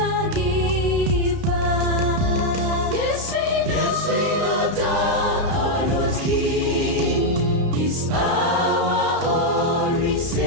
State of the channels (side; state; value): left; late; 32 ms